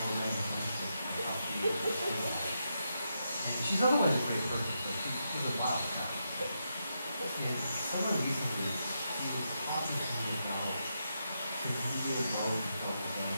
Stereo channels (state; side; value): inverted; both; correlation -0.84